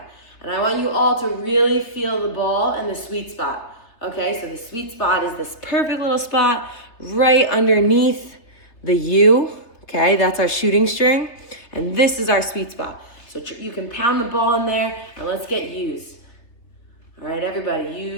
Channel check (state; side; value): late; right; 3.3 ms